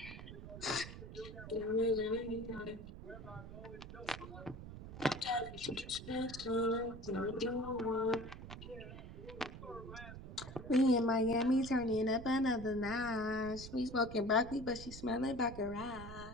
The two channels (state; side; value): noise; right; rumble, 12 dB below the sound